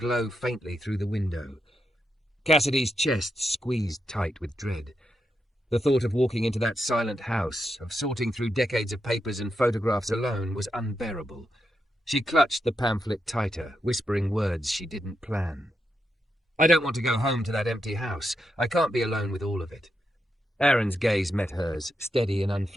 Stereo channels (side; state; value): both; normal; correlation 0.84